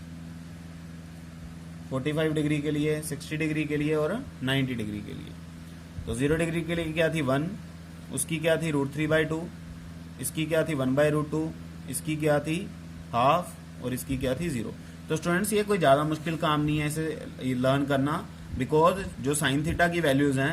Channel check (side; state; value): both; identical; correlation 1.00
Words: 45 डिग्री के लिए, 60 डिग्री के लिए और 90 डिग्री के लिए। तो 0 डिग्री के लिए क्या थी 1, उसकी क्या थी √3/2, इसकी क्या थी 1/√2, इसकी क्या थी हाफ और इसकी क्या थी 0। तो स्टूडेंट्स ये कोई ज़्यादा मुश्किल काम नहीं है इसे लर्न करना, बिकॉज जो साइन थीटा की वैल्यूज हैं